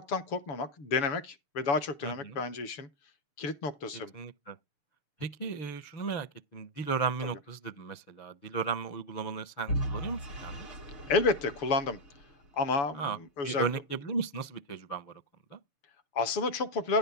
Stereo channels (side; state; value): right; late; 6.8 ms